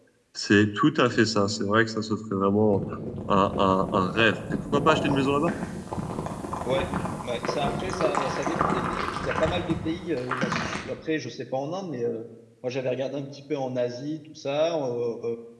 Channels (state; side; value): identical; both; correlation 1.00